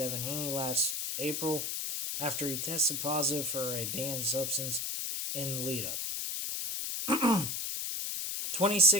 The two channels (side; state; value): left; noise; hiss, 2 dB below the sound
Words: Haney last April after he tested positive for a banned substance in the lead-up.